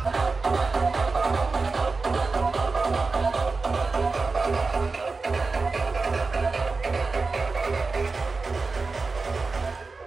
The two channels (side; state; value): left; quieter; 4.0 dB